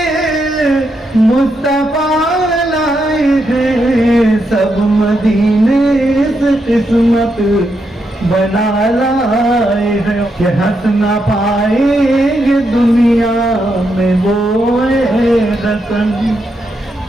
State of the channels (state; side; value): normal; both; correlation 0.82